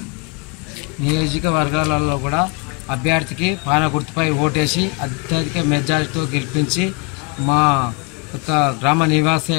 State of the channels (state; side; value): quieter; right; 30.4 dB